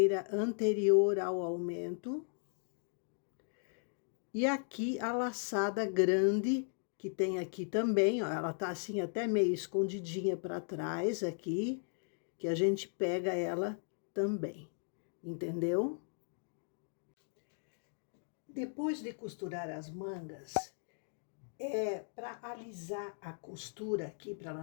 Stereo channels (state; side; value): silent; right; 53 dB below the other